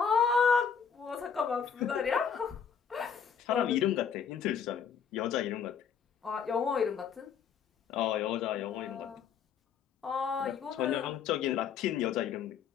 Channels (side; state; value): right; quieter; 7.1 dB